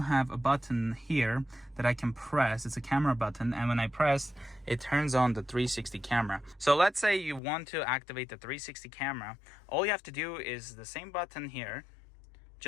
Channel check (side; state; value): right; drops out; at 7.4 s